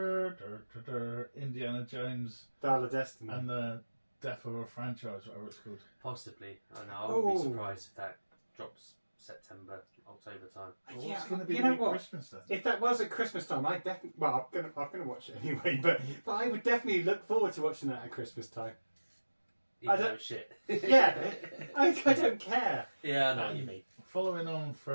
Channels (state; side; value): inverted; both; correlation -1.00